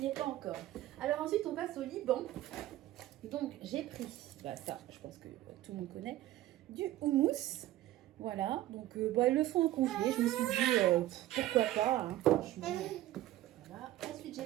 est pas encore. Alors ensuite, on passe au Liban. Donc, j'ai pris, bah, ça, je pense que tout le monde connaît, du houmous. Voilà, donc ils le font en congelé, je me suis dit pourquoi pas, hein, franchement. Voilà. Ensuite j'ai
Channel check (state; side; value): quieter; left; 14.9 dB